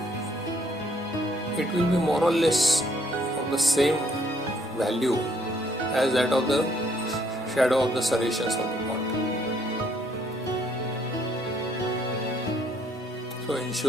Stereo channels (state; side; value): normal; both; correlation 0.67